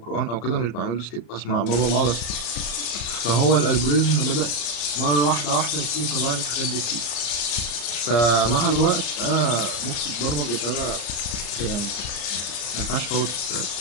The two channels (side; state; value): right; late; 34 ms